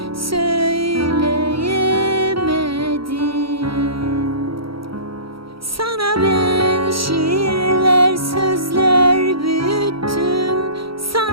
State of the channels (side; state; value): left; late; 0.75 ms